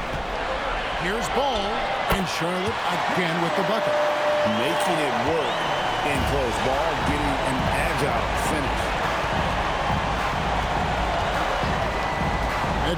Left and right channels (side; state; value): both; identical; correlation 1.00